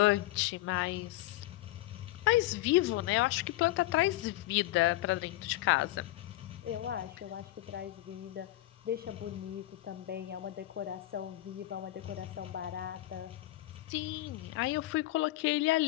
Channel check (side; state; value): right; quieter; 16.7 dB